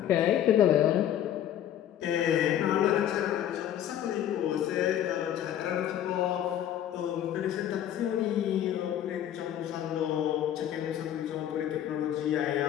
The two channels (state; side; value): quieter; right; 10.9 dB